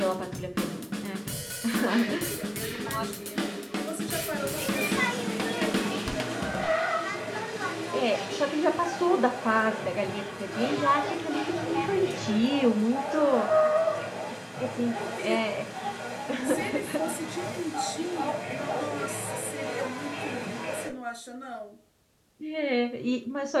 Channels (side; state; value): both; identical; correlation 1.00